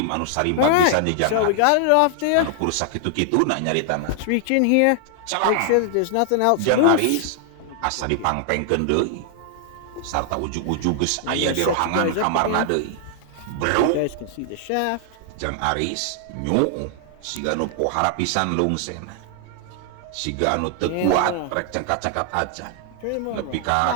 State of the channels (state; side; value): different; both; correlation 0.00